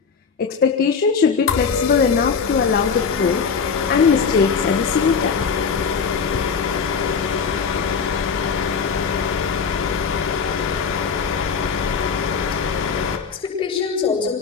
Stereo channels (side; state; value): right; quieter; 5.8 dB